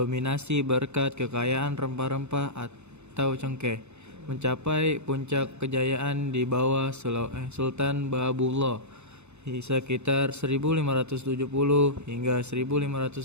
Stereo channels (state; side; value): late; left; 0.81 ms